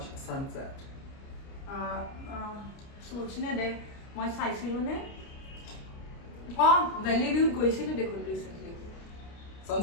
sunset सोचने दे मैं চাইছিলো নে ভ্যালি ভিউ গৈছিলো দেখোন ৰিসেন্টলি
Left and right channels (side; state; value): right; late; 29 ms